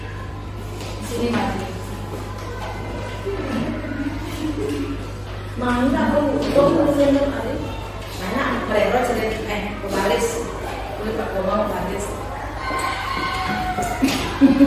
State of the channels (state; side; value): identical; both; correlation 1.00